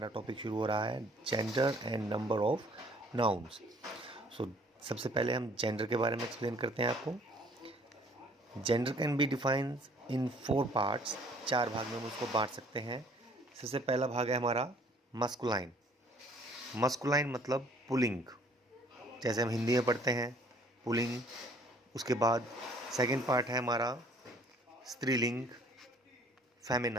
टॉपिक शुरू हो रहा है gender and number of nouns. So सबसे पहले हम जेंडर के बारे में एक्सप्लेन करते हैं आपको. Gender can be defined in 4 parts. 4 भाग में हम उसको बांट सकते हैं. सबसे पहला भाग है हमारा मस्कुलाइन. मस्कुलाइन मतलब पुलिंग, जैसे हम हिंदी में पढ़ते हैं पुलिंग. उसके बाद सेकंड पार्ट है हमारा स्त्रीलिंग,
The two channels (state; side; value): normal; both; correlation 0.57